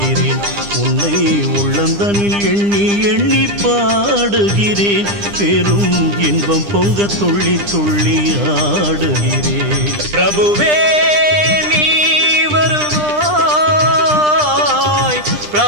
உன்னை உள்ளந்தனில் எண்ணி எண்ணி பாடுகிறேன், பெரும் இன்பம் பொங்க துள்ளி துள்ளி ஆடுகிறேன். பிரபுவே நீ வருவாய்,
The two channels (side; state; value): left; late; 9.9 ms